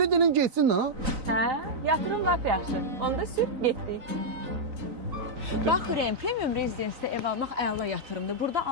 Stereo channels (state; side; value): late; left; 3.9 ms